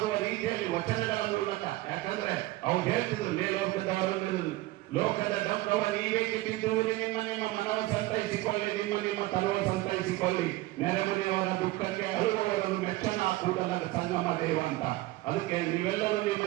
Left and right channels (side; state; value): left; quieter; 18.3 dB